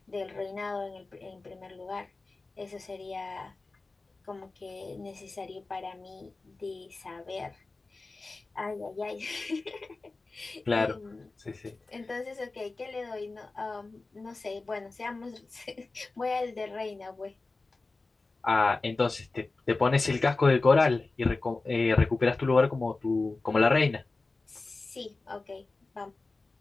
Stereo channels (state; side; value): quieter; right; 3.5 dB